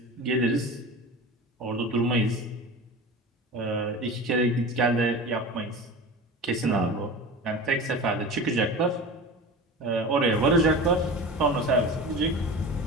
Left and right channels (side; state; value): both; normal; correlation 0.32